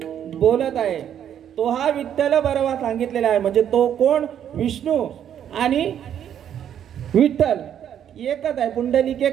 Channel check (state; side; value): quieter; left; 9.6 dB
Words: बोलत आहे. तो हा विठ्ठल बरवा सांगितलेला आहे. म्हणजे तो कोण, विष्णू आणि विठ्ठल एकच आहे. पुंडलिके